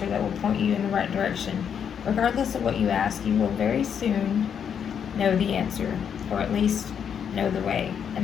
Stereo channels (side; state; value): right; quieter; 7.9 dB